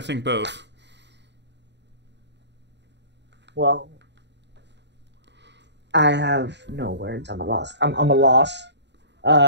think both. Well, I have no words. I'm a loss. I'm a loss.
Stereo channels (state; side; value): late; left; 0.51 ms